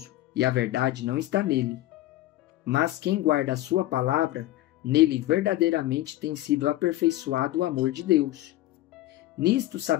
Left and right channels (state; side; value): quieter; right; 15.7 dB